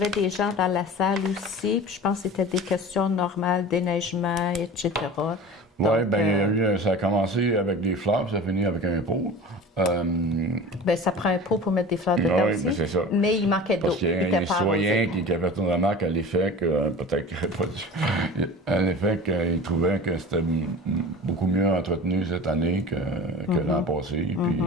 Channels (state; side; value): normal; both; correlation 0.36